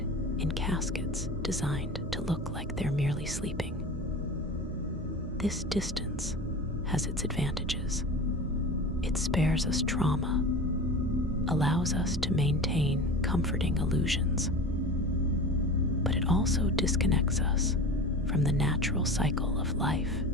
in caskets designed to look like they're merely sleeping. This distance has its advantages. It spares us trauma, allows us to maintain comforting illusions, but it also disconnects us from the natural cycle of life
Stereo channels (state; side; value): normal; both; correlation 0.32